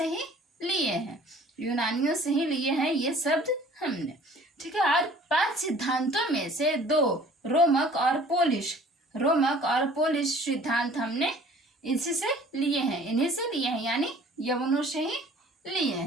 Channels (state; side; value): normal; both; correlation 0.51